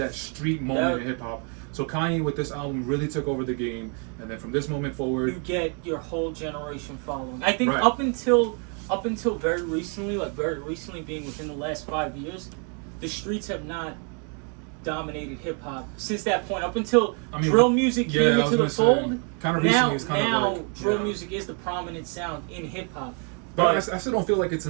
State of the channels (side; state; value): left; quieter; 38.5 dB